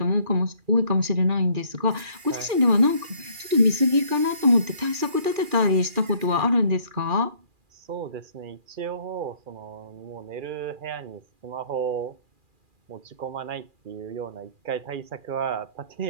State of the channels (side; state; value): left; late; 2.4 ms